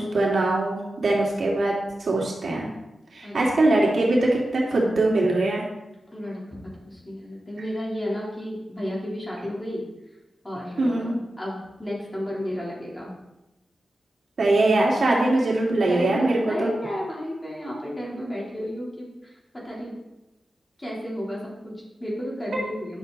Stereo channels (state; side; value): normal; both; correlation 0.92